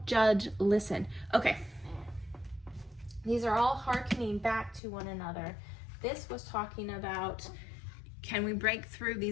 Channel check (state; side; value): drops out; right; at 4.8 s